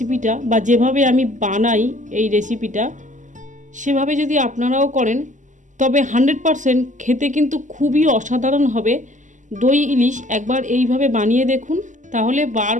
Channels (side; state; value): left; late; 0.36 ms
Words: বা যেভাবে আমি বানাই এই রেসিপিটা, সেভাবে যদি আপনারাও করেন তবে 100% খেতে কিন্তু খুবই অসাধারণ হবে। দই ইলিশ একবার এইভাবে বানিয়ে দেখুন, তাহলে